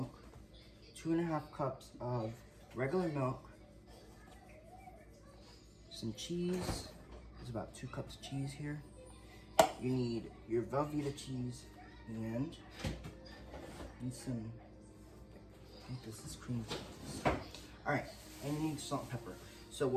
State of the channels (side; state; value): both; identical; correlation 1.00